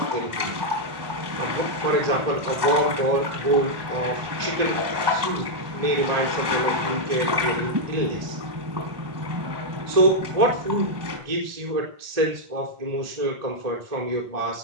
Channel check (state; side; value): late; left; 1.1 ms